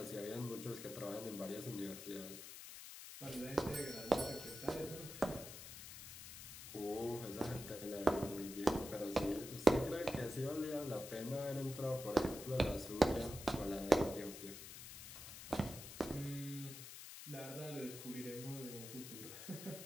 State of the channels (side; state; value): left; noise; hiss, 11 dB below the sound